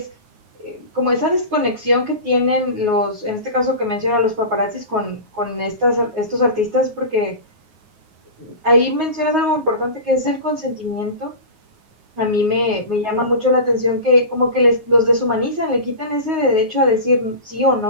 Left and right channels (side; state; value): left; late; 9.5 ms